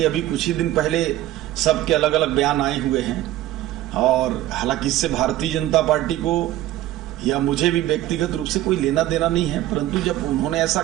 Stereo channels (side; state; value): left; quieter; 14.6 dB